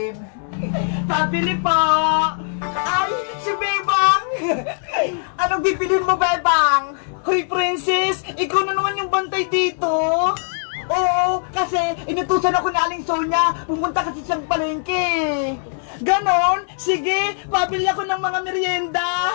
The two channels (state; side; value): silent; right; 65 dB below the other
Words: Pabili po! Ay, si Bebang! Anong bibilin mo, Bebang? Hoy, Princess! Ikaw na naman yung bantay dito! Oo, kasi inutusan ako ni Aling Sonia. Pumunta kasi siyang palengke. Ganon? Sige, pabili ako ng mga merienda.